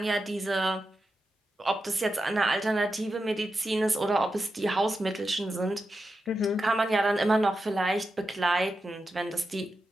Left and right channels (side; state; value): both; normal; correlation 0.89